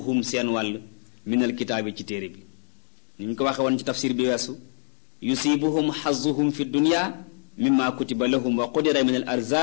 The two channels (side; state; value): right; silent; digital silence